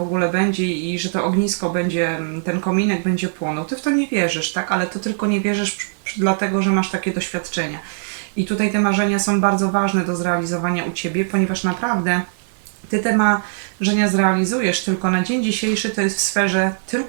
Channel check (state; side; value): silent; left; digital silence